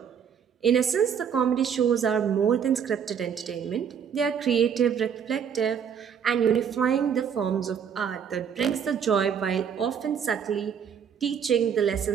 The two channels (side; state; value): left; quieter; 7.7 dB